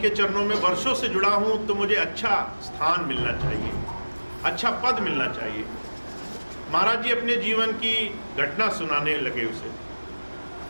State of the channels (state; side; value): inverted; both; correlation -1.00